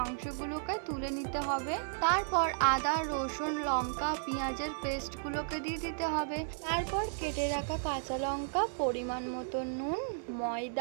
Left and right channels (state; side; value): silent; left; 55 dB below the other